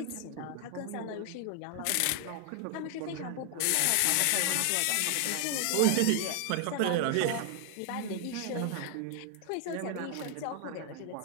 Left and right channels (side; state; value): both; different; correlation 0.00